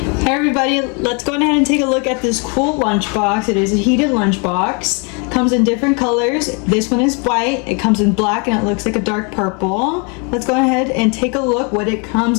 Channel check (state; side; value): quieter; right; 34.3 dB